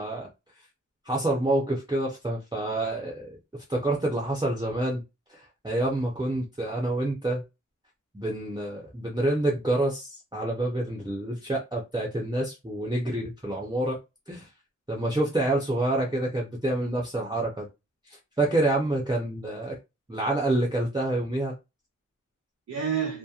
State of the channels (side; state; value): both; normal; correlation 0.63